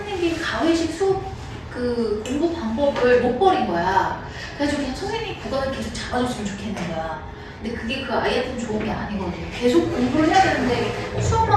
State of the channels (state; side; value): identical; both; correlation 1.00